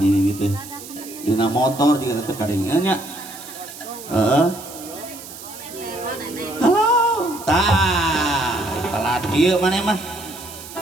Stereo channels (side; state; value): right; noise; hiss, 14 dB below the sound